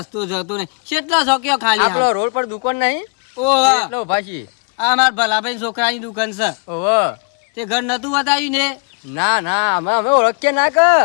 જતો નહીં કેટલા શોક્યો ખાલી આપણો રોડ પર દુકાન નહીં ઓહો એટલે ઉભા છીએ આ મારા ભલાભાઈ છોકરાની દુકાન છે ઓહો તે ઘર નતું બતાવ્યું ને ના ના અમે ઓળખીએ ના કે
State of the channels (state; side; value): quieter; right; 38.6 dB